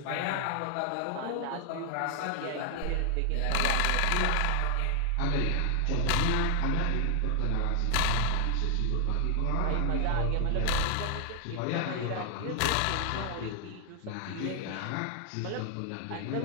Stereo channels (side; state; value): both; different; correlation 0.00